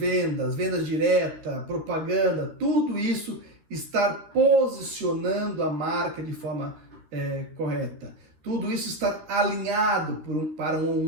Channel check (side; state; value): left; late; 13 ms